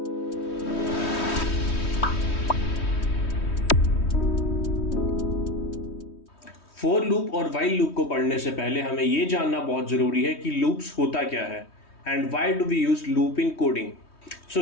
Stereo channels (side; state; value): right; late; 3.2 ms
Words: For loop और while loop को पढ़ने से पहले हमें ये जानना बहुत ज़रूरी है कि loops होता क्या है and why do we use loop in coding.